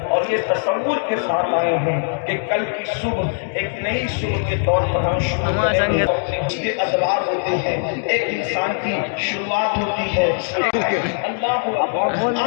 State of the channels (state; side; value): silent; right; 65 dB below the other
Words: اور یہ تصور کے ساتھ آئے ہیں کہ کل کی صبح ایک نئی صبح کے طور پر ہم شروع کریں گے. اس کے ادوار ہوتے ہیں، ایک انسان کی شروعات ہوتی ہے. اللہ اکبر.